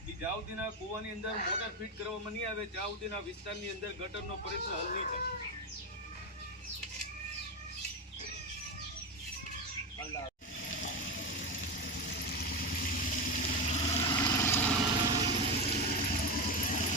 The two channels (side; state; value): both; normal; correlation 0.16